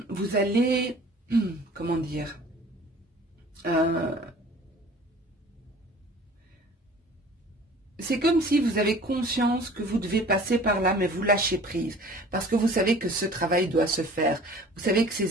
allez, comment dire, c'est comme si vous avez conscience que vous devez passer par là, mais vous lâchez prise. Parce que vous savez que ce travail doit se faire. Vous savez que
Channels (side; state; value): both; normal; correlation 0.47